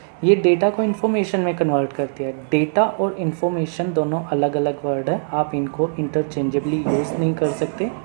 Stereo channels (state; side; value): silent; left; digital silence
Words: ये डेटा को इन्फॉर्मेशन में कन्वर्ट करती है। डेटा और इन्फॉर्मेशन दोनों अलग अलग वर्ड है, आप इनको इंटरचेंजेबली यूज़ नहीं कर सकते।